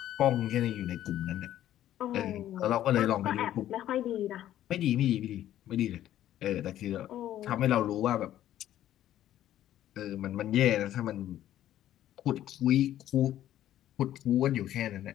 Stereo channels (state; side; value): quieter; right; 12.5 dB